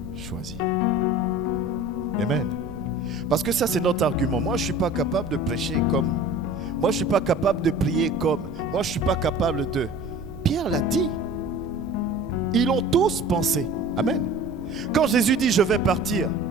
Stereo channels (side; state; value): right; noise; rumble, 16 dB below the sound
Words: choisis. Amen. Parce que ça, c'est notre argument. Moi, je ne suis pas capable de prêcher comme. Moi, je ne suis pas capable de prier comme. Moi, je ne suis pas capable de. Pierre l'a dit. Ils l'ont tous pensé. Amen. Quand Jésus dit, je vais partir,